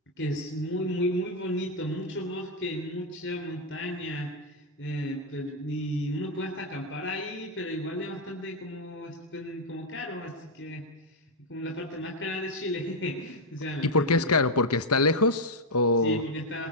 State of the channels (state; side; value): normal; both; correlation 0.00